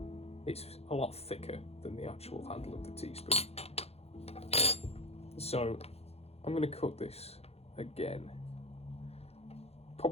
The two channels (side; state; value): right; late; 0.29 ms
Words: It's a lot thicker than the actual handle of the teaspoon. So I'm going to cut this again.